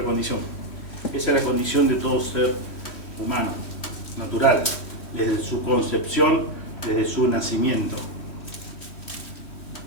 condición. Esa es la condición de todo ser humano, natural, desde su concepción, desde su nacimiento.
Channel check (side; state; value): right; late; 3.1 ms